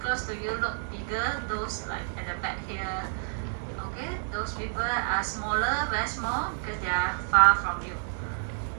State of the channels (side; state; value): left; silent; 58 dB below the other